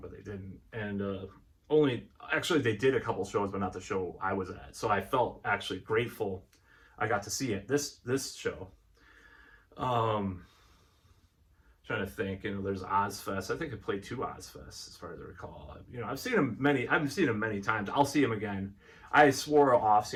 but they didn't. And they did a couple shows, but not the show I was at. So I felt actually grateful I got to see it this show. Trying to think, you know, there's Ozfest. I think I played 2 Ozfests as far as I recall. You know, I've seen him many times. I'll see him again. I swore off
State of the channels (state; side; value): identical; both; correlation 1.00